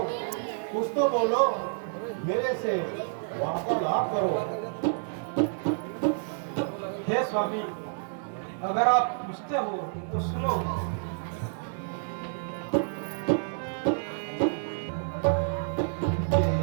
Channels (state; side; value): silent; left; digital silence